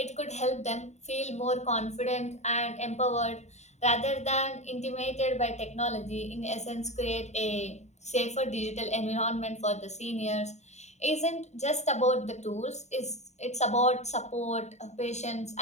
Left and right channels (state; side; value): late; right; 0.33 ms